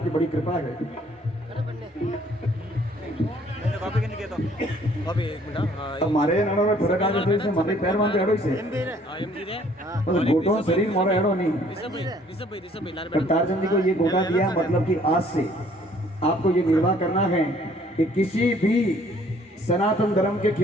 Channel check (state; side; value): normal; both; correlation 0.60